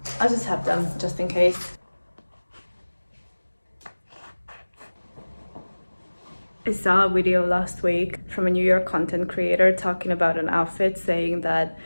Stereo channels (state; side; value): inverted; both; correlation -1.00